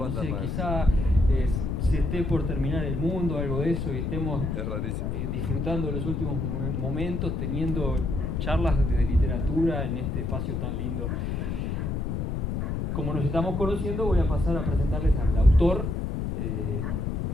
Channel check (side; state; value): left; noise; rumble, 1 dB below the sound